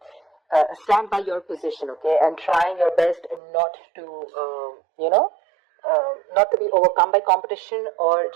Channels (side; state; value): left; drops out; at 3.4 s